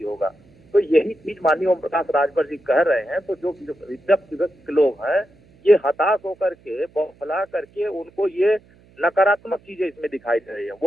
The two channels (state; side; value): noise; right; hum, 29 dB below the sound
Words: होगा। तो यही चीज माननीय ओम प्रकाश राजभर जी कह रहे हैं। तो जो विपक्ष लोग हैं, ये हताश होकर के, बौखला करके, उनको ये नकारात्मक चीजें इसमें दिखाई दे रही है।